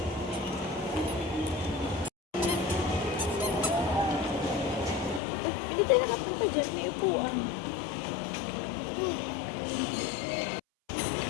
Hindi tayo nakapunta dyan. May upuan.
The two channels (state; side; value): drops out; right; at 5.2 s